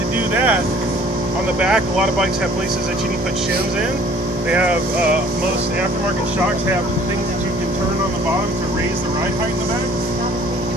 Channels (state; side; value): normal; both; correlation 0.54